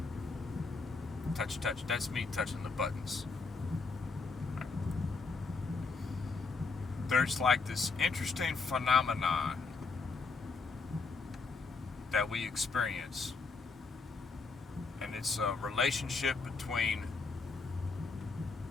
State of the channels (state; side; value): quieter; right; 4.3 dB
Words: Touch. That's me touching the buttons. Right. There's like this interesting phenomenon that we experience. And it's a relationship between